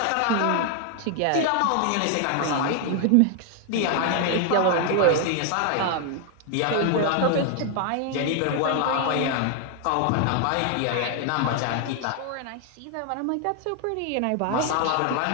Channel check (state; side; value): different; both; correlation 0.00